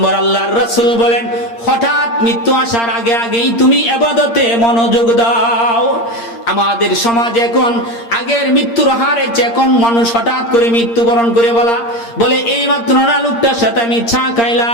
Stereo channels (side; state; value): right; late; 8.7 ms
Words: আল্লাহর রাসূল বলেন হঠাৎ মৃত্যু আসার আগে আগেই তুমি ইবাদতে মনোযোগ দাও। আমাদের সমাজে এখন আগের মৃত্যুর হারে এখন মানুষ হঠাৎ করে মৃত্যুবরণ করে বলে এই মাত্র না লোকটার সাথে আমি চা